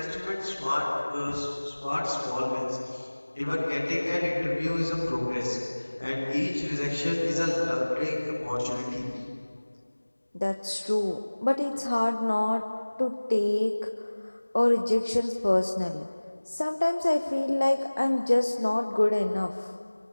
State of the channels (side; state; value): both; inverted; correlation -1.00